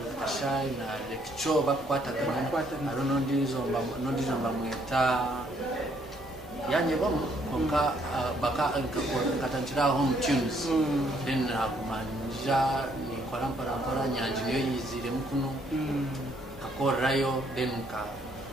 kashai na lecture bakwata kana arono ndizo mbamweta yanye bomu konka baka katanchira home tunes then akumanja ni kwarampara nyanji niyo yizire mukuno akorayo then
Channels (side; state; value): both; normal; correlation 0.68